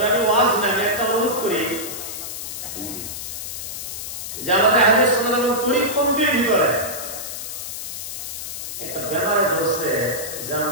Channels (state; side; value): noise; left; hiss, 7 dB below the sound